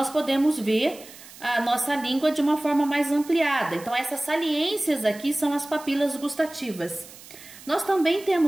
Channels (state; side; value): noise; right; hiss, 19 dB below the sound